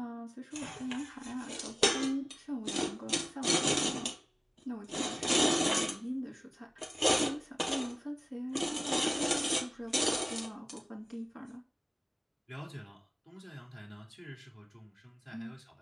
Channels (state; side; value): identical; both; correlation 1.00